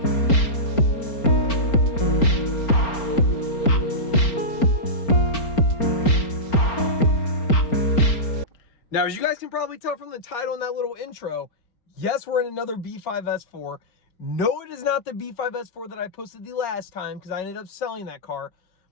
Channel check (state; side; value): late; right; 4.4 ms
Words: Now, as you guys can probably tell from the title and that little intro, yes, we're in another B5 S4. No, it is not the B5 S4 that I posted the last time because I ended up selling that car.